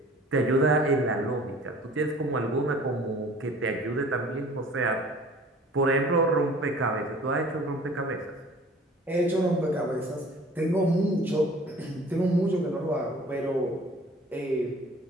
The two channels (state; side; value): normal; both; correlation 0.49